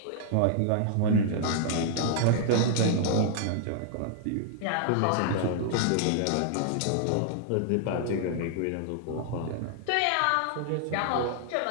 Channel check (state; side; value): different; both; correlation -0.01